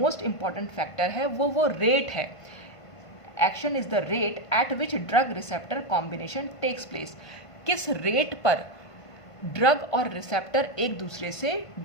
इंपॉर्टेंट फैक्टर है वो रेट है। Action is the rate at which drug receptor combination takes place, किस रेट पर ड्रग और रिसेप्टर एक दूसरे से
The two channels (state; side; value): late; right; 1.5 ms